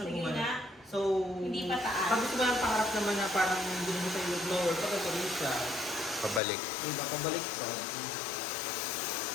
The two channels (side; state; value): right; drops out; at 6.4 s